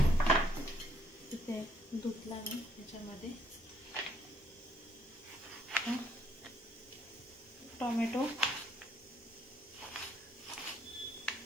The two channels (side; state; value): both; normal; correlation 0.68